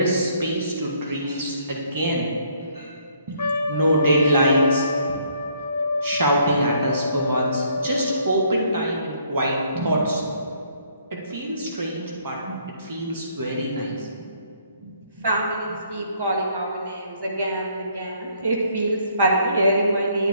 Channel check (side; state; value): both; inverted; correlation -0.66